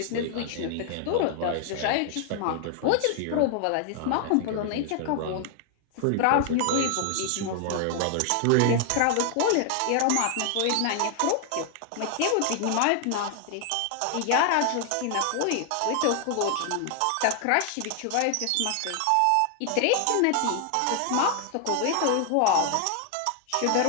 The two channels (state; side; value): different; both; correlation 0.00